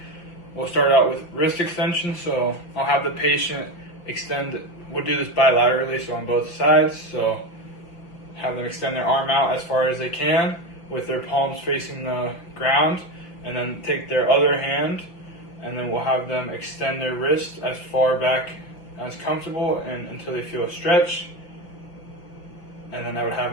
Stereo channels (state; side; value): late; right; 5.8 ms